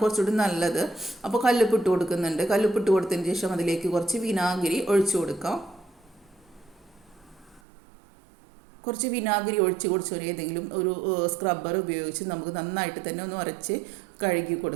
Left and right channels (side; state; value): left; drops out; at 7.6 s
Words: കുറച്ചുകൂടി നല്ലത്. അപ്പോൾ കല്ലുപ്പിട്ട് കൊടുക്കുന്നുണ്ട്. കല്ലുപ്പിട്ട് കൊടുത്തതിന് ശേഷം അതിലേക്ക് കുറച്ച് വിനാഗിരി ഒഴിച്ചു കൊടുക്കാം. കുറച്ച് വിനാഗിരി ഒഴിച്ച് കൊടുത്ത് ഏതെങ്കിലും ഒരു സ്ക്രബ്ബർ ഉപയോഗിച്ച് നമുക്ക് നന്നായിട്ട് തന്നെ ഒന്ന് ഉരച്ച് കഴുകി